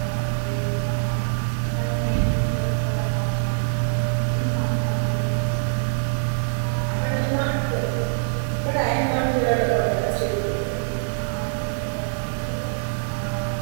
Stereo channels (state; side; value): silent; left; digital silence